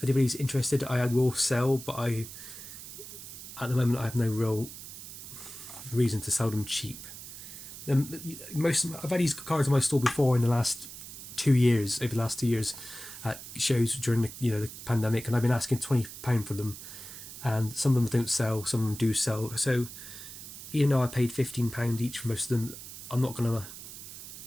anybody's interested, I will sell, but at the moment I have no real reason to sell them cheap. I've had these cards in my store before in the last 2 years, over the last 2 years, at shows during the pandemic, and I've been asking £20 for them, and some of them don't sell, some of them do sell. So even though I paid £15 each for most of them, I'm not gonna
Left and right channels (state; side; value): noise; right; hiss, 12 dB below the sound